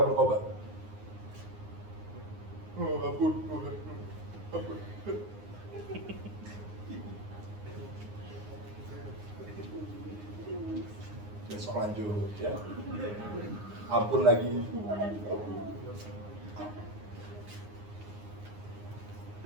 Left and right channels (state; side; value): late; left; 9.7 ms